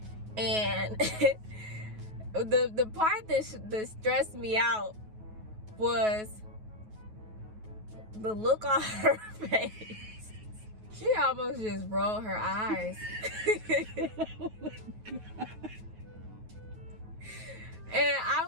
And the part that stressed me out was the look on her face. She almost just rolled her eyes. Oh my God. And I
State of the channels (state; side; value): late; left; 9.4 ms